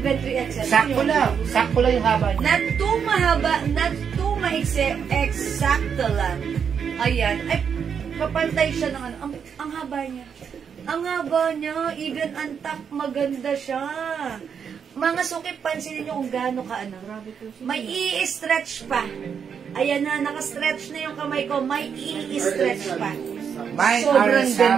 3XL. Sakto lang. Sakto lang yung haba niya. Not too mahaba, not too maiksi, eksakto lang. Ayan. Ay, kapantay siya ng ano. Ang haba niya. Ang haba niya, even ang top, maganda siya. Mga suki, pansinin niyo kung gaano ka ano. May i-stretch pa. Ayan na, naka-stretch na yung kamay ko. May i-stretch pa. Mine Sobrang RL ganda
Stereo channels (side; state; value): left; quieter; 7.1 dB